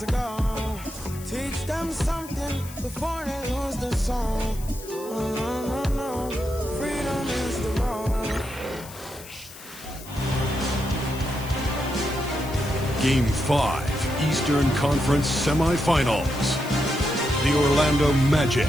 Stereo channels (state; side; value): noise; left; hiss, 16 dB below the sound